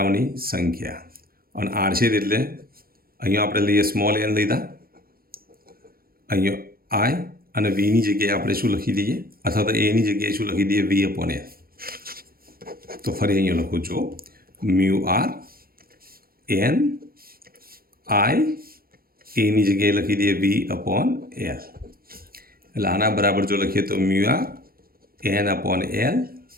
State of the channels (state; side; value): late; left; 0.43 ms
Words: સંખ્યા, અને આડછેદ એટલે અહીંયા આપણે લઈએ સ્મોલ એન લીધા, અહીંયા આઈ અને વીની જગ્યાએ આપણે શું લખી દઈએ, અથવા તો એની જગ્યાએ શું લખી દઈએ વી અપોન એલ. તો ફરી અહીંયા લખું છું મ્યુ આર એન આઈ એની જગ્યાએ લખી દઈએ વી અપોન એલ. એટલે આના બરાબર જો લખીએ તો mu R N upon L